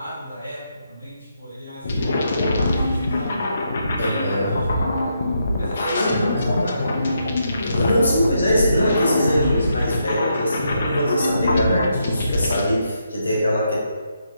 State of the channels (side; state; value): both; inverted; correlation -0.79